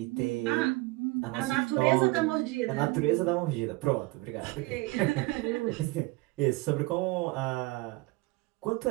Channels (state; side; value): quieter; left; 22.3 dB